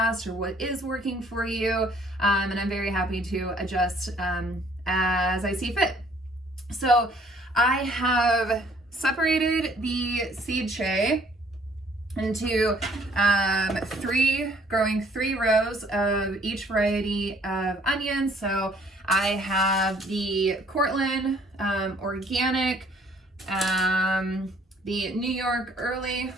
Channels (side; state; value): both; normal; correlation 0.60